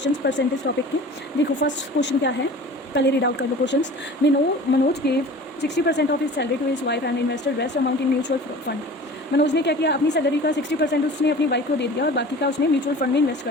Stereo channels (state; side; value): normal; both; correlation 0.41